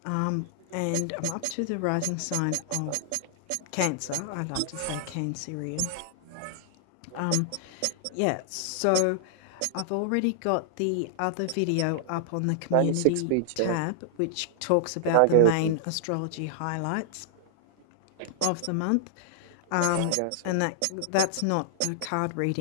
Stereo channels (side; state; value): both; different; correlation -0.01